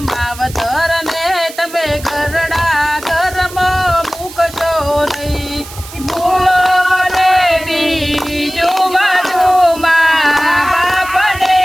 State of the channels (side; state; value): right; noise; hiss, 16 dB below the sound